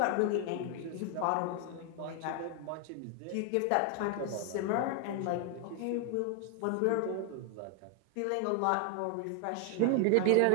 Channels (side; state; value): both; different; correlation 0.00